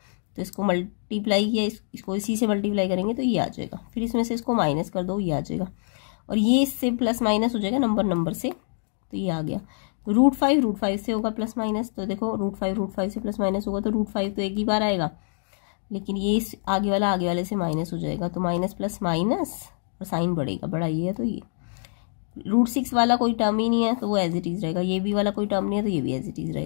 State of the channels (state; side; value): silent; right; 61 dB below the other